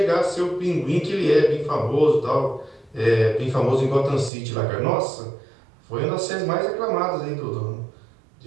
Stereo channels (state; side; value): drops out; left; at 4.3 s